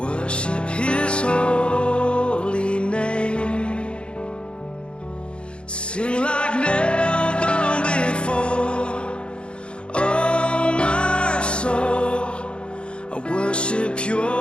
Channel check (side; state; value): right; late; 0.056 ms